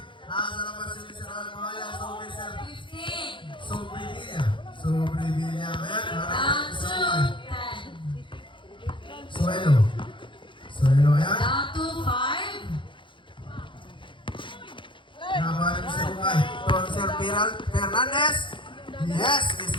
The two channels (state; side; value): late; right; 0.24 ms